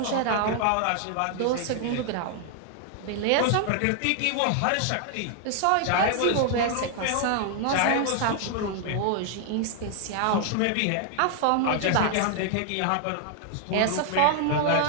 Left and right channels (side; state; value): both; different; correlation 0.00